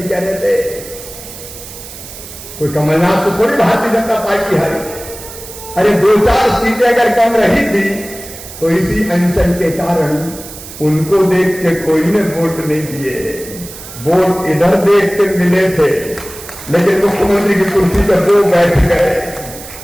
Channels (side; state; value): right; noise; hiss, 14 dB below the sound